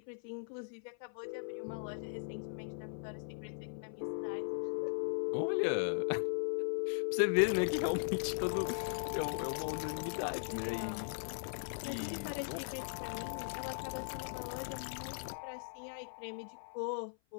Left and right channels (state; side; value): silent; right; 52 dB below the other